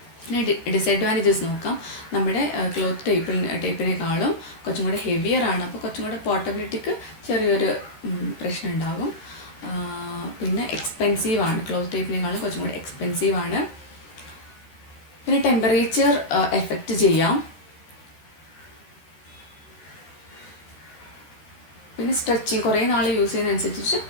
പിന്നെ ഡിസഡ്വാൻറ്റേജസ് നോക്കാം. നമ്മുടെ ക്ലോത്ത് ടേപ്പിനേക്കാളും കുറച്ചും കൂടെ ഹെവിയർ ആണ്, അപ്പോൾ കുറച്ചും കൂടെ പോർട്ടബിലിറ്റിക്ക് ചെറിയൊരു പ്രശ്നം ഉണ്ടാകും. പിന്നെ എക്സ്പെൻസീവ് ആണ്, ക്ലോത്ത് ടേപ്പിനേക്കാളും കുറച്ചും കൂടെ എക്സ്പെൻസീവ് ആണ്. പിന്നെ ടെമ്പറേച്ചർ എഫക്റ്റ് ചെയ്യാം. പിന്നെ സ്ട്രെച്ചിങ് കുറേ നാൾ യൂസ് ചെയ്യുന്നതനുസരിച്ച്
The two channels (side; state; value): right; late; 14 ms